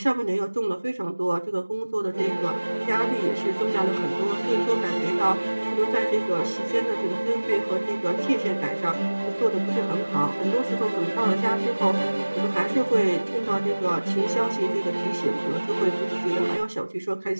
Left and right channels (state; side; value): inverted; both; correlation -1.00